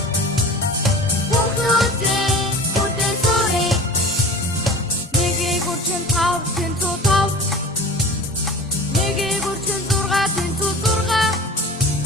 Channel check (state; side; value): normal; both; correlation 0.39